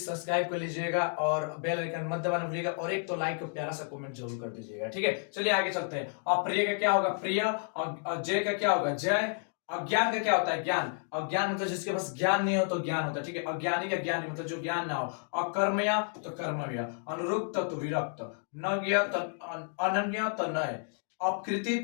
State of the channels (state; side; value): silent; right; 57 dB below the other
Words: सब्सक्राइब कर लीजिएगा और बेल आइकन मत दबाना भूलिएगा, और एक तो लाइक और प्यारा सा कमेंट जरूर कर दीजिएगा, ठीक है। चलिए आगे चलते हैं। अप्रिय का क्या होगा प्रिय, और जय का क्या होगा जय, अज्ञान का क्या होता है ज्ञान, अज्ञान मतलब जिसके पास ज्ञान नहीं हो तो ज्ञान होता है, ठीक है। अज्ञानी का ज्ञान मतलब जो ज्ञान ना हो, अकर्मया तो कर्मया, अनुरुक्त तो विरक्त, नज्ञ तो अनन्य तो नय, अपकृति